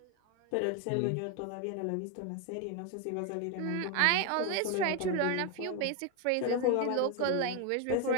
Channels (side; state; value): both; different; correlation 0.01